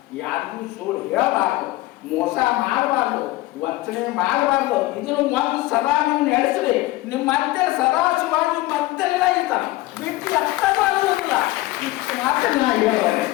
ಯಾರಿಗೂ ಸುಳ್ಳು ಹೇಳಬಾರ್ದು, ಮೋಸ ಮಾಡಬಾರ್ದು, ವಂಚನೆ ಮಾಡಬಾರ್ದು. ಇದನ್ನು ಒಂದು ಸದಾ ನೀವು ನಡೆಸ್ರಿ. ನಿಮ್ಮ ಮತ್ತೆ ಸದಾ ಶಿವಾಗಿ ಮತ್ತೆಲ್ಲ ಇರ್ತಾನೆ ಬಿಟ್ಟು ಎತ್ತಲ್ಲ. ಇಷ್ಟು ಮಾತ್ರ ನಾ ಹೇಳೋದೆ.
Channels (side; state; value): right; quieter; 18.4 dB